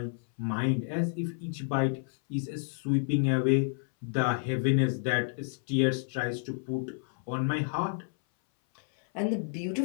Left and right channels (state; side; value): silent; right; 58 dB below the other